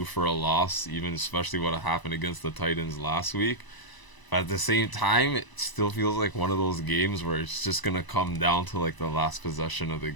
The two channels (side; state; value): right; late; 1.0 ms